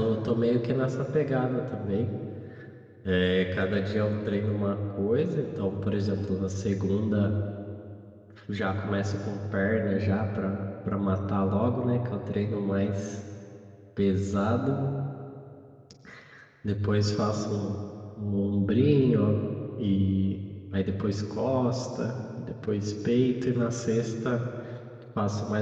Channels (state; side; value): identical; both; correlation 1.00